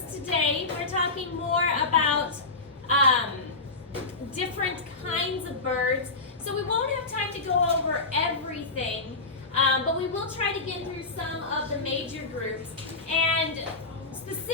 today. We're talking more about different kinds of birds. So we won't have time to go over everything, but we will try to get through some of the major groups. And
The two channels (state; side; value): quieter; right; 3.6 dB